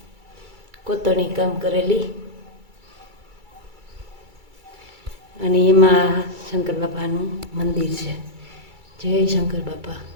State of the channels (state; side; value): late; left; 2.3 ms